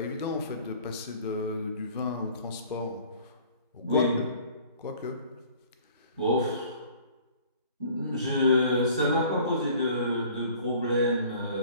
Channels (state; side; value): inverted; both; correlation -0.51